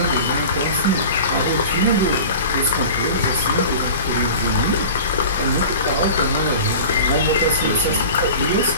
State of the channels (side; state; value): both; inverted; correlation -0.37